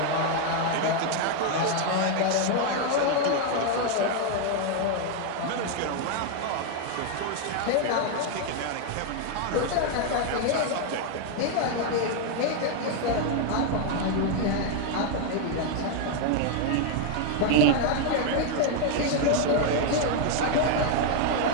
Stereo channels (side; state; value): both; different; correlation 0.00